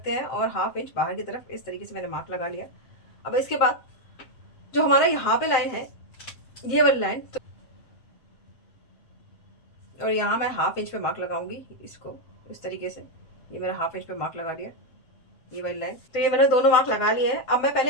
हैं और हाफ इंच बाहर की तरफ इस तरीके से मैंने मार्क लगा लिया। अब इसके बाद जो हमारा यहाँ पे लाइन है, ये वाली लाइन, तो और यहाँ मैं हाफ इंच पे मार्क लगाऊंगी इसको इस तरीके से। ये मेरा हाफ इंच पे मार्क लगा दिया, ये वाली लाइन। तो ये मैंने दोनों मार्क लगा लिए हैं। अब मैं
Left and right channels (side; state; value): right; late; 7.8 ms